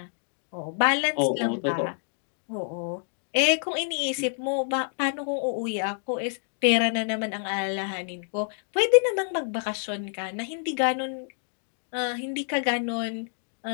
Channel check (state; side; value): silent; right; digital silence